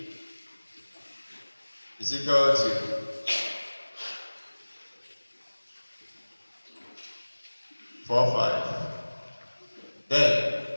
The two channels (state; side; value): inverted; both; correlation -1.00